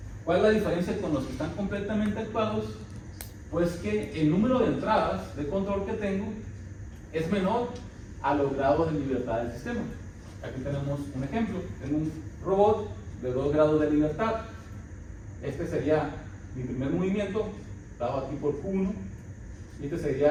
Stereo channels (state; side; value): identical; both; correlation 1.00